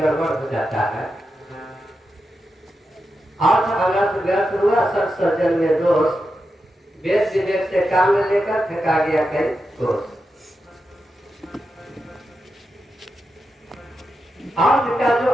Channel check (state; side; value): normal; both; correlation 0.88